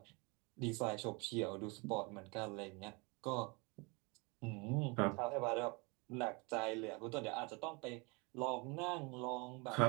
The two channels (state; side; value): quieter; left; 29.2 dB